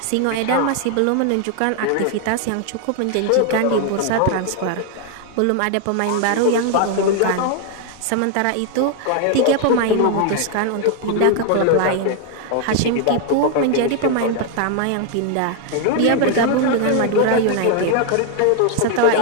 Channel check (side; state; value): both; different; correlation 0.00